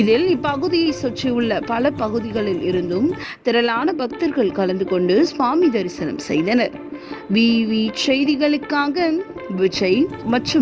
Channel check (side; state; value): both; identical; correlation 1.00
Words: இதில் இப்பகுதியை சுற்றியுள்ள பல பகுதிகளில் இருந்தும் திரளான பக்தர்கள் கலந்து கொண்டு சுவாமி தரிசனம் செய்தனர். விவி செய்திகளுக்காக விஜய்